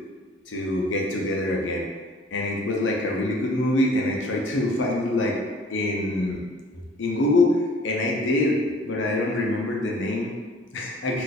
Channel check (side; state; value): both; normal; correlation 0.52